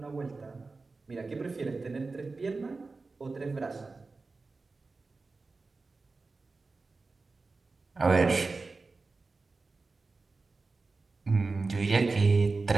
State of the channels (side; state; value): left; quieter; 3.9 dB